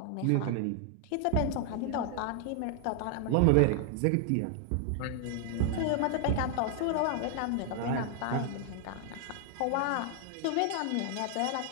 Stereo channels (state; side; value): different; both; correlation 0.00